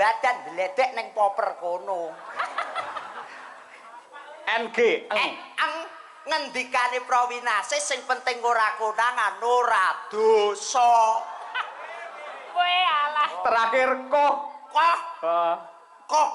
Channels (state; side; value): identical; both; correlation 1.00